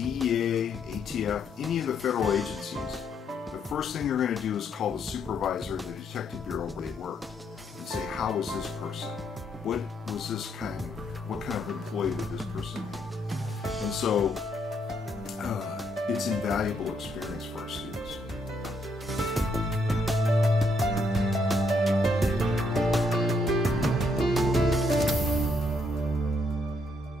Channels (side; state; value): both; normal; correlation 0.74